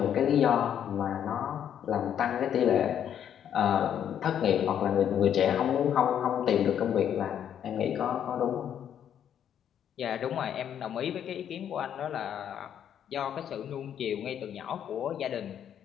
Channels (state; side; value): quieter; right; 9.4 dB